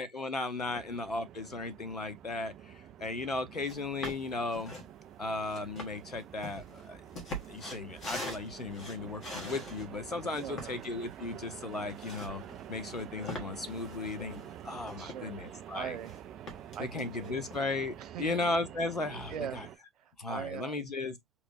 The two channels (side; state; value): both; normal; correlation 0.43